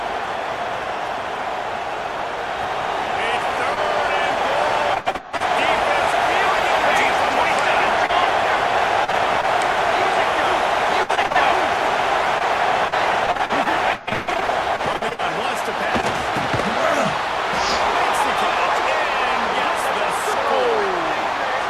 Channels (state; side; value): identical; both; correlation 1.00